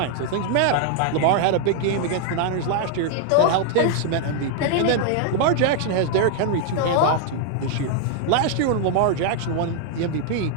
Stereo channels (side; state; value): both; different; correlation 0.00